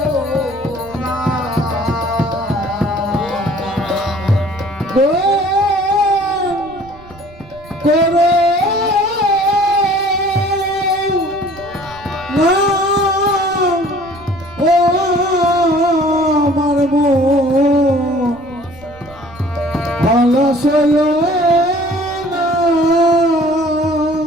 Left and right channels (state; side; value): noise; right; rumble, 21 dB below the sound